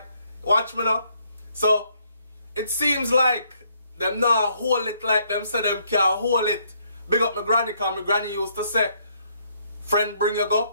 Watch me now. So, it seems like them not hold it like them say them can't hold it. Big up my granny, because my granny used to say, friend bring you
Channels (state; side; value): inverted; both; correlation -0.70